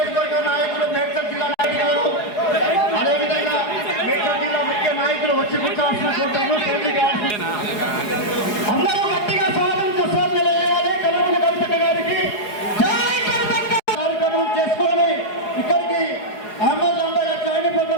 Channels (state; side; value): late; right; 4.8 ms